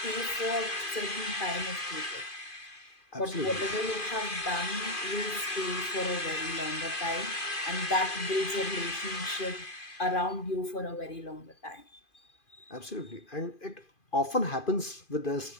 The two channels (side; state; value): right; late; 2.5 ms